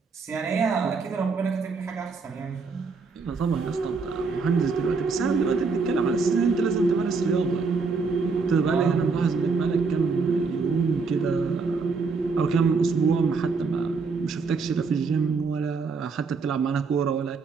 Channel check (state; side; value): quieter; left; 4.7 dB